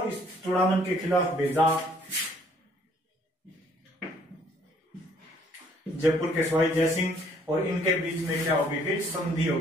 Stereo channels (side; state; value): both; normal; correlation 0.62